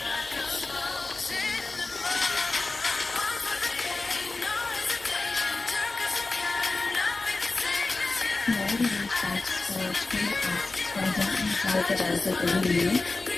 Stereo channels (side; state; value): right; quieter; 3.4 dB